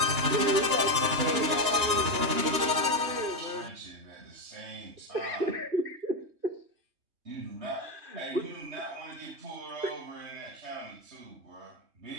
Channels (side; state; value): left; late; 2.9 ms